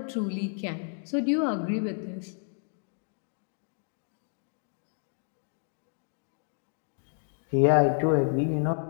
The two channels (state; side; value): silent; right; 57 dB below the other